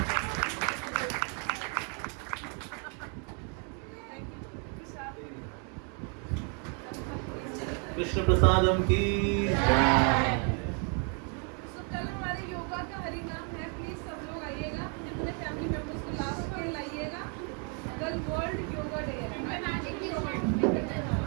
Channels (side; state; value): left; quieter; 38.4 dB